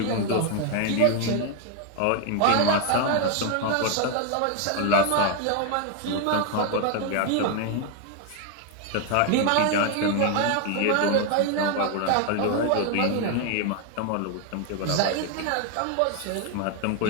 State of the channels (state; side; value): different; both; correlation 0.01